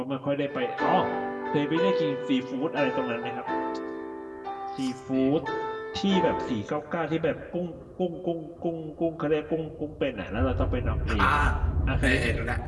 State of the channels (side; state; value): both; identical; correlation 1.00